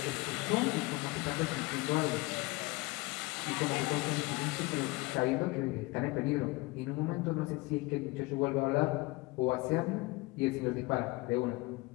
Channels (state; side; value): quieter; right; 23.3 dB